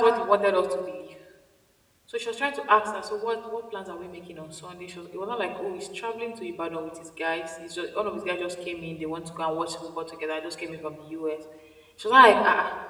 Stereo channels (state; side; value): identical; both; correlation 1.00